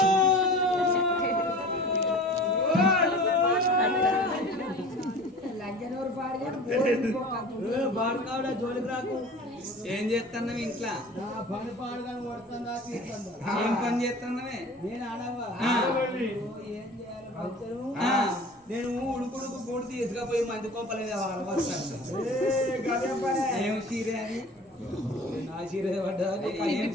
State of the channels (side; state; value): both; normal; correlation 0.41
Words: జోలికి రాకు. ఏం చేస్తున్నావు ఇంట్లో? పని పాడుగా కొడుతుందా? ఏం పని చేస్తున్నావే? నేను ఆడవా ఏం చేయాలి? నేను ఉడుకుడుకు పూడి తీసుకపోయి మంది కోపలేదు. ఏం చీరే అది? నా చీర పడ్డా? ఏం